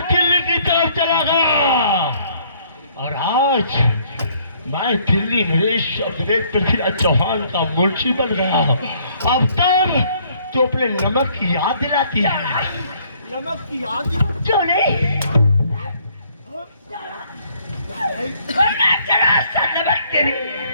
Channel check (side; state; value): both; inverted; correlation -0.63